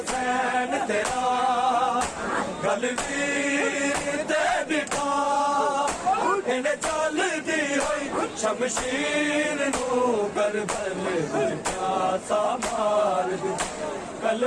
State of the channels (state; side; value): identical; both; correlation 1.00